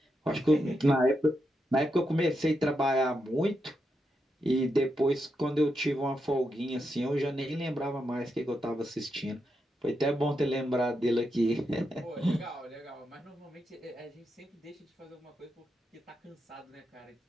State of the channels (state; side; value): normal; both; correlation 0.84